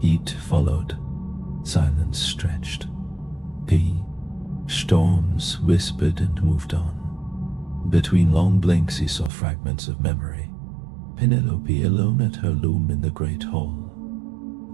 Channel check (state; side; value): drops out; left; at 9.3 s